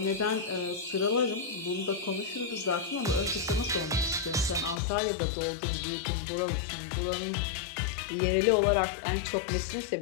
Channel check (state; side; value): drops out; right; at 4.8 s